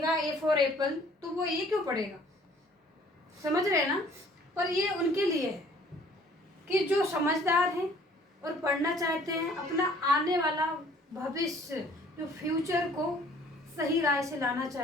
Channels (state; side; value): normal; both; correlation 0.56